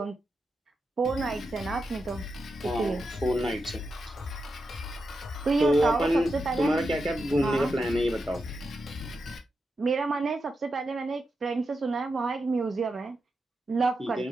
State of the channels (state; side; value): normal; both; correlation 0.87